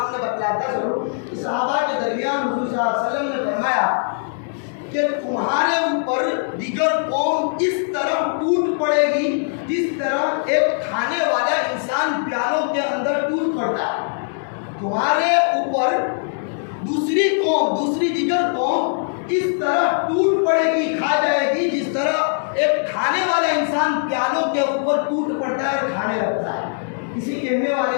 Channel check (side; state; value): right; silent; digital silence